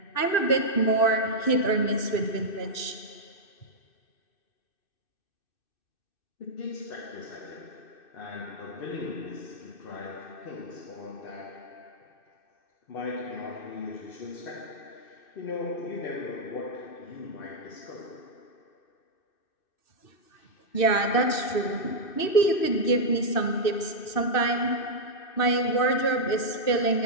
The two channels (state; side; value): late; right; 2.6 ms